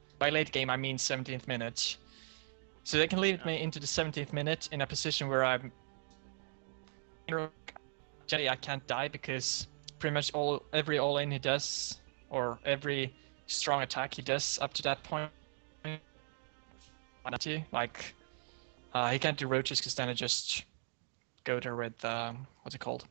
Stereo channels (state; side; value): silent; left; digital silence